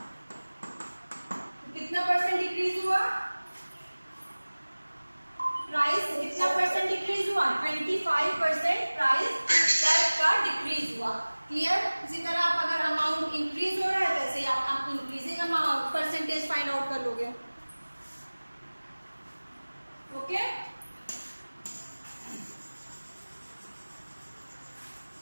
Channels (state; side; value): inverted; both; correlation -1.00